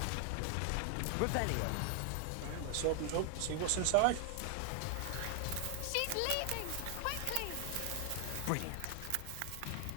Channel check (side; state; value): both; different; correlation 0.00